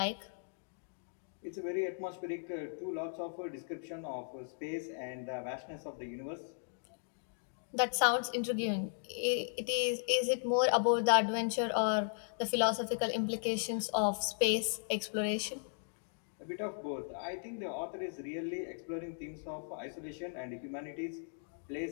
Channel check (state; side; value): silent; right; digital silence